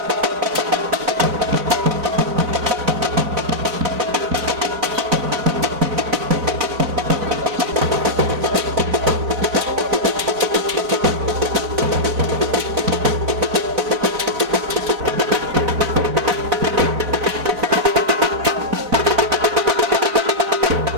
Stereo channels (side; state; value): left; late; 3.8 ms